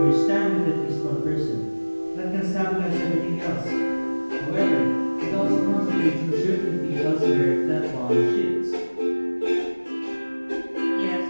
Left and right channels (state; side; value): inverted; both; correlation -1.00